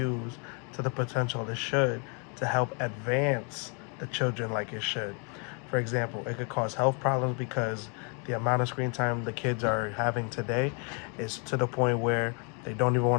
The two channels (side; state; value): right; quieter; 37.0 dB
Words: to the potential it should to help advance the children like it should. For example, it could cause health problems because the amount of screen time the kids are having today is to the point where they don't even